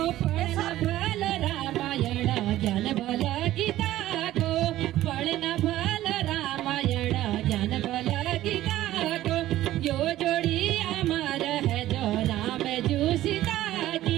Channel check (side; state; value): left; quieter; 14.5 dB